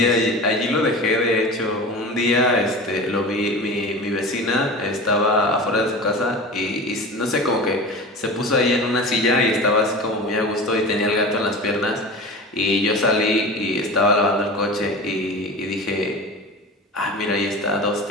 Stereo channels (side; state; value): both; normal; correlation 0.32